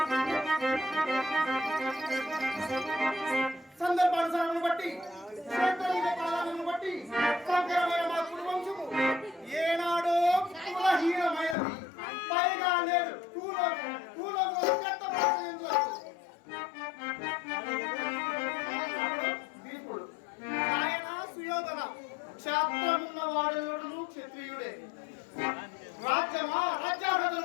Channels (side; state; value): right; drops out; at 11.6 s